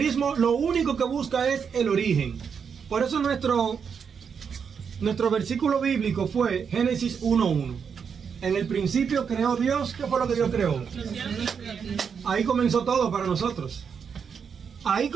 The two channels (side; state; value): left; quieter; 6.6 dB